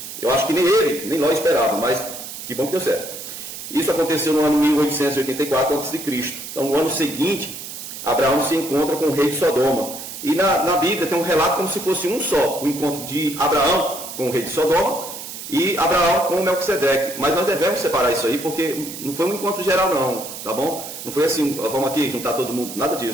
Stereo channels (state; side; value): noise; right; hiss, 10 dB below the sound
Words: Eu acho que nem ele, nem Ló esperava, mas que bom que deu certo. Isso aconteceu no ano 1884 a.C. Então, no ano seguinte, Abraão se encontra com o rei de Sodoma. E na Bíblia tem um relato como se fosse um só, o encontro de Abraão com o rei de Sodoma e Abraão com Melquisedeque. Mas nós devemos separar isso aí, porque não foi um encontro geral não, tá bom? Não foi assim, vamos aqui juntar todo mundo, nada